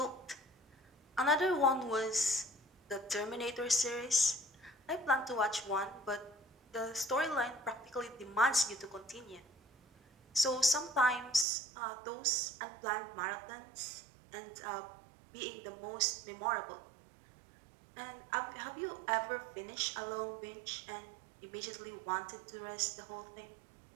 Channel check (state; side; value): drops out; left; at 11.5 s